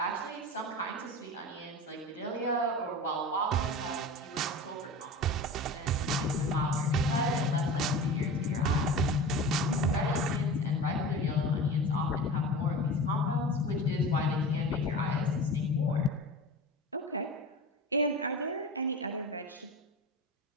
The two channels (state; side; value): normal; both; correlation 0.32